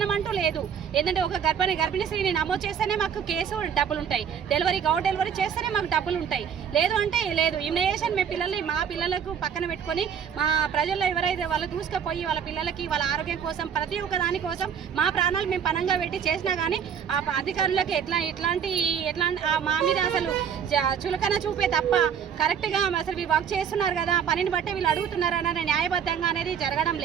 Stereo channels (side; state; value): left; quieter; 7.8 dB